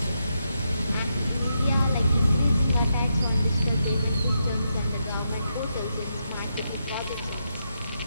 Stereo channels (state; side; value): inverted; both; correlation -0.83